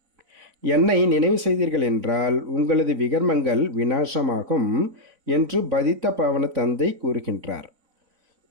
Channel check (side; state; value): left; late; 4.0 ms